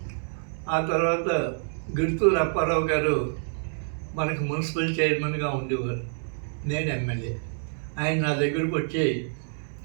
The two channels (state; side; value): silent; left; digital silence